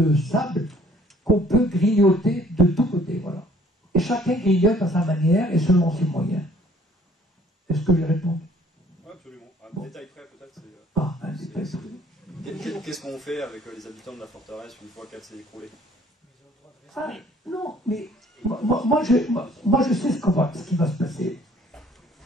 sable qu'on peut grignoter de tous côtés. Voilà. Et chacun grignote à sa manière et selon ses moyens. Est-ce que j'ai répondu? Oui, absolument. Un détail près, peut-être, c'est... un détail près. Qu'est-ce qu'on fait avec les habitants de la forteresse une fois qu'elle s'est écroulée? Ah, non, mais moi, je sais ce qui va se passer.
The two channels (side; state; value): both; normal; correlation 0.58